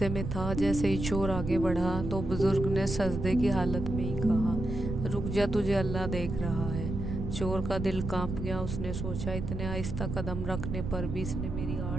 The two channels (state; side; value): noise; right; rumble, 5 dB below the sound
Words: में था। जैसे ही चोर आगे बढ़ा तो बुजुर्ग ने सजदे की हालत में ही कहा, रुक जा, तुझे अल्लाह देख रहा है। चोर का दिल कांप गया। उसने सोचा, इतने आहिस्ता कदम रखने पर भी इसने मेरी